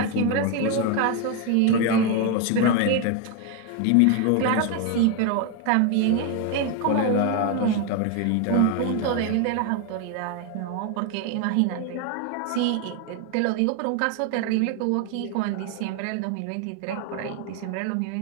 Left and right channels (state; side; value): different; both; correlation 0.01